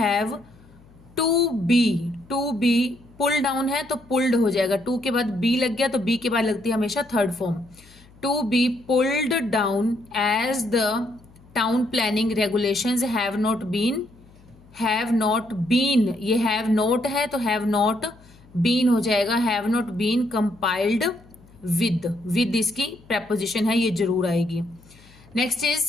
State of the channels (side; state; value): left; noise; hum, 26 dB below the sound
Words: to be pull down है तो पुल्ड हो जाएगा. टू के बाद बी लग गया तो बी के बाद लगती है हमेशा third form. To be pulled down as the town planning regulations have not been. ये हैव नॉट है तो हैव नॉट बीन हो जाएगा. Have not been compiled with इसकी प्रेपोजिशन है, ये जरूर आएगी. Next is